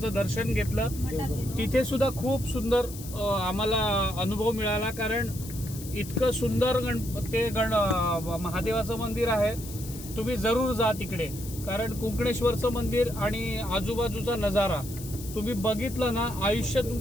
दर्शन घेतलं. तिथे सुद्धा खूप सुंदर आम्हाला अनुभव मिळाला, कारण इतकं सुंदर महादेवाचं मंदिर आहे. तुम्ही जरूर जा तिकडे, कारण कुंकणेश्वरचं मंदिर आणि आजूबाजूचा नजारा तुम्ही बघितलं ना, आयुष्य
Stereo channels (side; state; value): left; noise; hiss, 14 dB below the sound